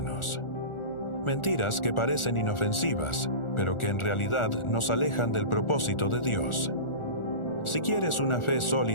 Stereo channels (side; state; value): right; late; 1.4 ms